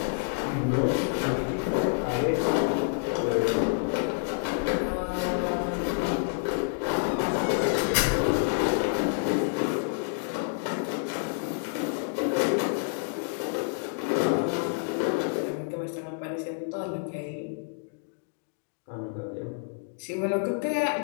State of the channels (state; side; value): silent; right; digital silence